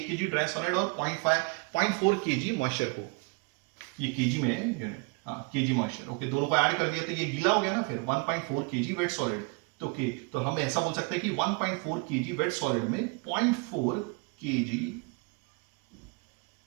kg ड्राई सॉलिड और 0.4 kg मॉइस्चर को, ये kg में यूनिट, हाँ kg मॉइस्चर, ओके, दोनों को ऐड कर दिया तो ये गीला हो गया ना, फिर 1.4 kg वेट सॉलिड। तो ओके, तो हम ऐसा बोल सकते हैं कि 1.4 kg वेट सॉलिड में 0.4 kg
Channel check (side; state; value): left; quieter; 31.2 dB